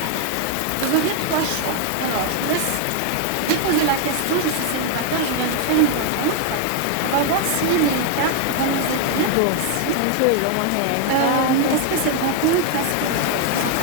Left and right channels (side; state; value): both; different; correlation 0.00